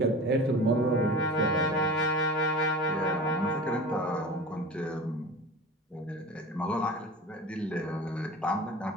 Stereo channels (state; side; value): normal; both; correlation 0.35